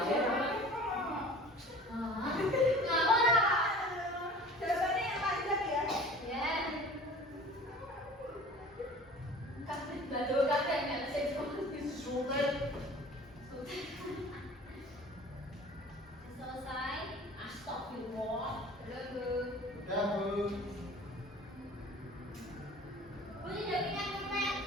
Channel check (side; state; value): both; normal; correlation 0.43